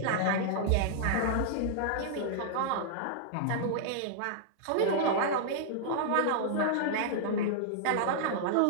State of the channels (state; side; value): different; both; correlation -0.01